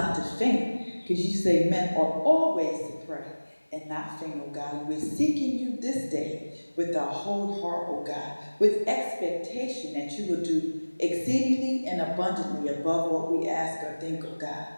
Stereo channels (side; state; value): both; inverted; correlation -1.00